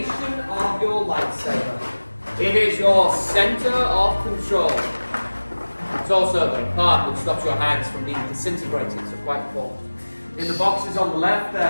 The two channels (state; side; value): inverted; both; correlation -1.00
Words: of your lightsaber. It is your center of control. It's also the part which stops your hands from being disintegrated, so quite important. In the boxes on the left